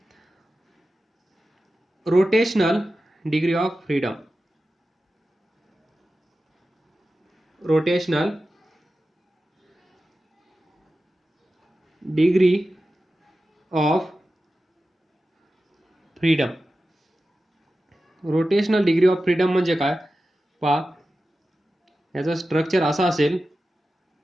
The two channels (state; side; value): normal; both; correlation 0.93